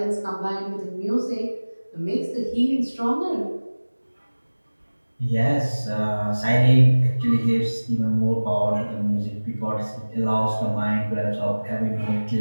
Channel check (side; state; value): both; inverted; correlation -1.00